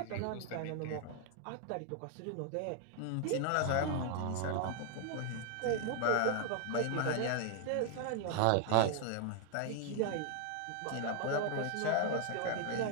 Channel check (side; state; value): both; different; correlation 0.00